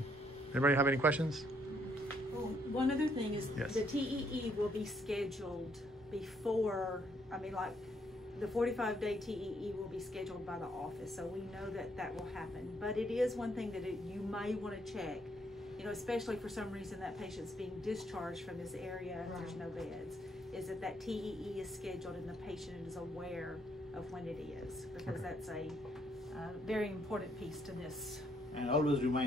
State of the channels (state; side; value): normal; both; correlation 0.71